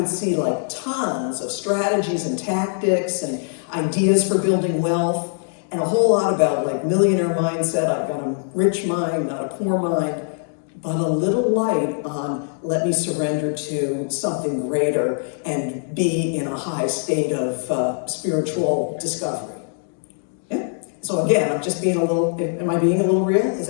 see like tons of strategies and tactics and ideas for building wealth, and a whole lot about like millionaire mindset. I've got a rich mind, not a poor mind, but a little light on let me surrender to something greater and be in a high state of spiritual discovery. Yeah? So again, I'm just being a little, am I being a little real? Is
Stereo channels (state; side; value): silent; right; digital silence